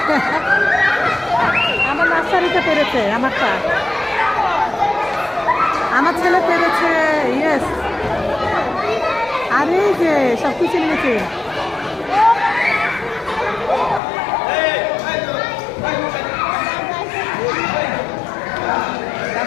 আমার নার্সারিতে পেরেছে। আমারটা আমার ছেলে পেরেছে। ইয়েস, আরে যে সব কিছু নিয়েছে।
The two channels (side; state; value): right; drops out; at 14.0 s